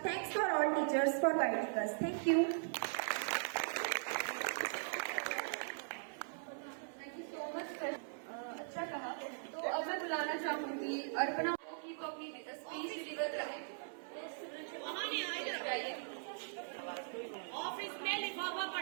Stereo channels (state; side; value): silent; left; 51 dB below the other